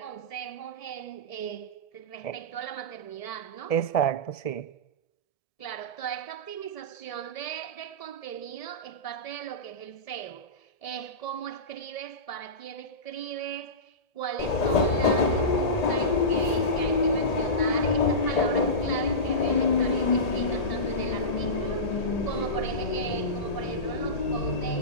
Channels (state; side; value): late; right; 1.8 ms